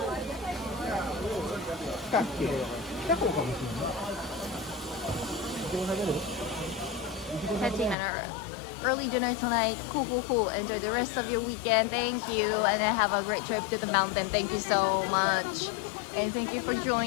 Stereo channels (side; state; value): right; drops out; at 8.0 s